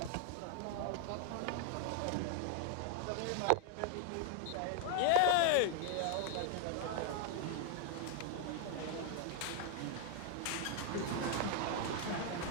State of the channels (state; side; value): different; both; correlation 0.00